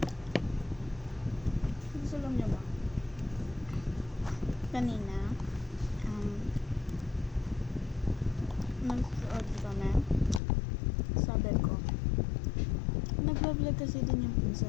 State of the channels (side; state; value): right; drops out; at 10.4 s